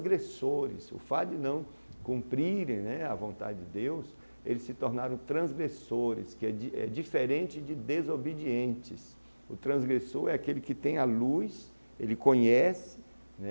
O fato de não cumprirem, né, a vontade de Deus, eles se tornaram transgressores, que é diferente de desobedientes. O transgressor é aquele que tem a luz, ele conhece,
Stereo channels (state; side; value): inverted; both; correlation -1.00